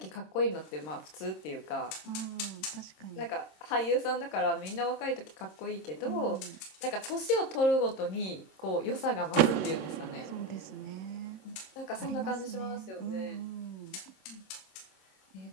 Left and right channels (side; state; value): right; late; 26 ms